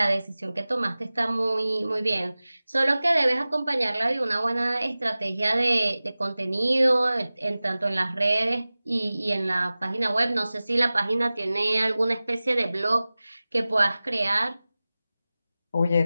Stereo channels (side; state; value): both; inverted; correlation -0.98